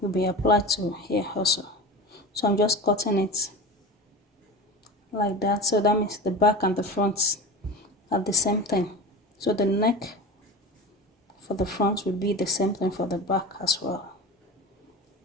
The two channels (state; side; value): normal; both; correlation 0.31